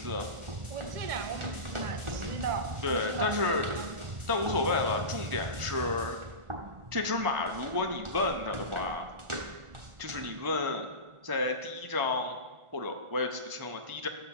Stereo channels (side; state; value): left; late; 1.4 ms